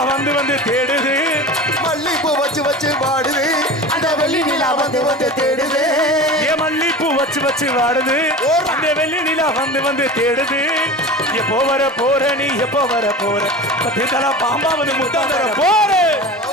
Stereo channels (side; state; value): both; normal; correlation 0.33